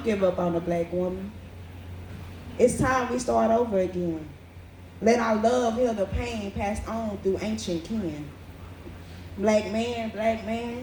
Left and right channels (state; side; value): identical; both; correlation 1.00